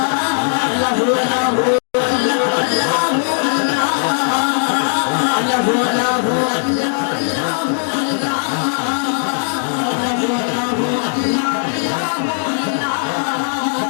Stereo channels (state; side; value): silent; right; digital silence